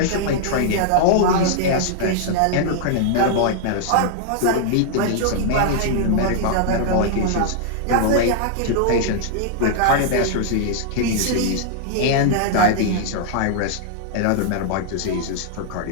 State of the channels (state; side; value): different; both; correlation -0.01